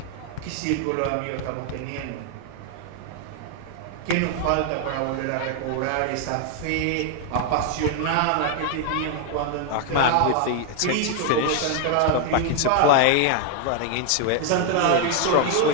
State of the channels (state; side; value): different; both; correlation 0.00